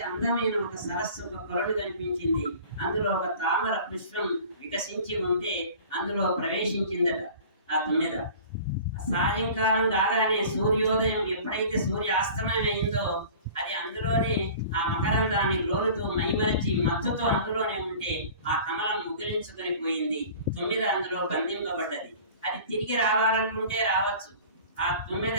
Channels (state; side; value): inverted; both; correlation -0.43